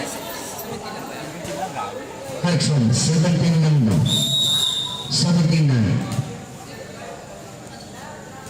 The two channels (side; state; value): both; identical; correlation 1.00